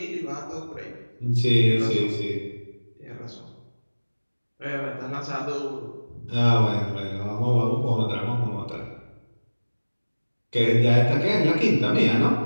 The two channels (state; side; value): inverted; both; correlation -1.00